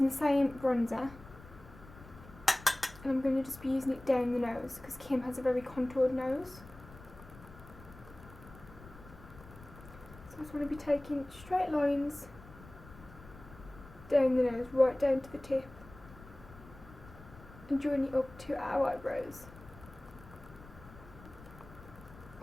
the same bronzer, and I'm going to just be using it down the nose because Kim has a very contoured nose. So I just want to be taking straight lines down the nose, right down to the tip, and join it up to our eyebrows.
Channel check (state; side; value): noise; left; rumble, 19 dB below the sound